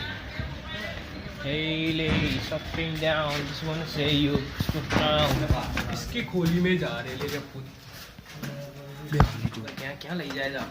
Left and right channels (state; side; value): identical; both; correlation 1.00